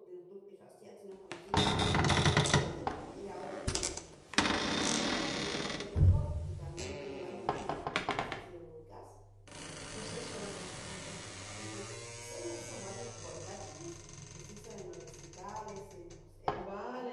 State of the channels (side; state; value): both; identical; correlation 1.00